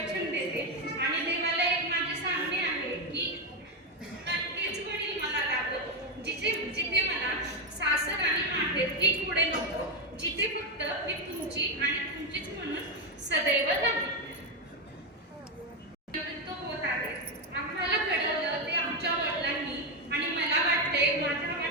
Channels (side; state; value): both; normal; correlation 0.07